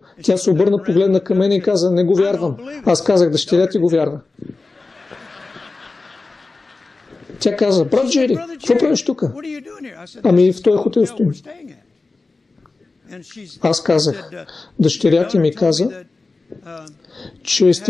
Тя се обърна, погледна към мен и каза, не го вярвам. Аз казах, дъщеря ти го вярва. Тя каза, брат Джери, какво правиш тук? Ами в този хотел стоим. Аз казах, дъщеря ти ми каза, че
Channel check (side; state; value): right; quieter; 3.6 dB